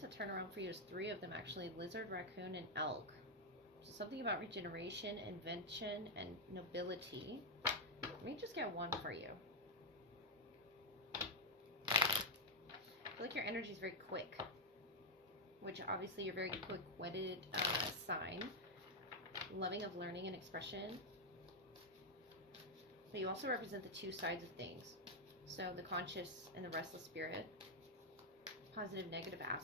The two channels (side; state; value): both; normal; correlation -0.01